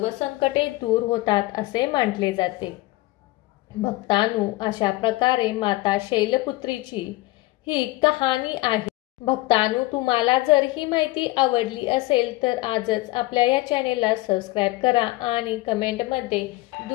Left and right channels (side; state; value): right; quieter; 19.9 dB